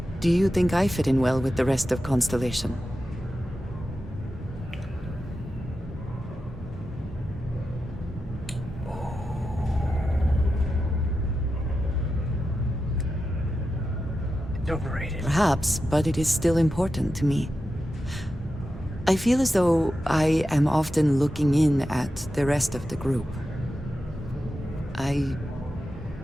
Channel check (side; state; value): both; normal; correlation 0.90